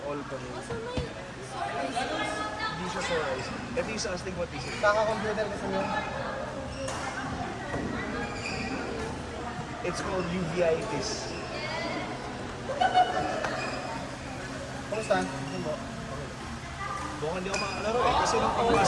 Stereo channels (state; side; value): identical; both; correlation 1.00